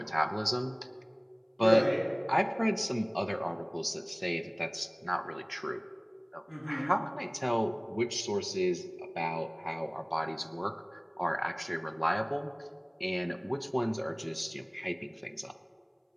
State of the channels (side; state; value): both; identical; correlation 1.00